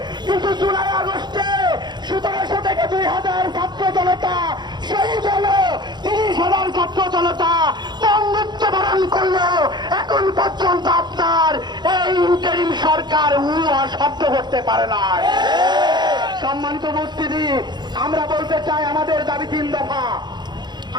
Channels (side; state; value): left; late; 0.21 ms